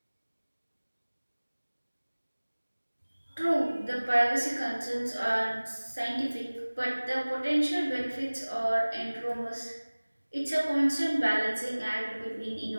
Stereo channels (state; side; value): inverted; both; correlation -1.00